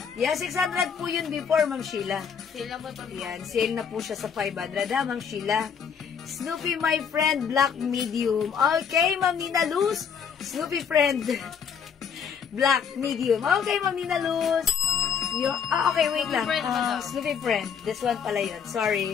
Yeah, 600 po yun before, Ma'am Sheila. Sila po ito. Ayan, sale na po siya sa 500, ha, Ma'am Sheila. Snoopy, my friend, black medium. Okay, Ma'am Nina Luz. Snoopy friend, black medium. Okay, Ma'am Nina Luz. Okay, wait lang. Snoopy friend. This one pala yun.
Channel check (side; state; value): right; quieter; 7.1 dB